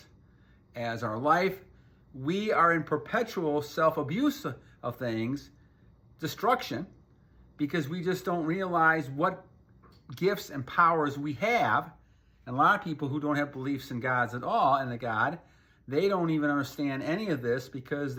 as our life, we are in perpetual self-abuse of things, destruction, because we just don't realize what gifts and powers we have. And a lot of people who don't have beliefs in gods at all, and a God, they don't even understand any of this because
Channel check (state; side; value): identical; both; correlation 1.00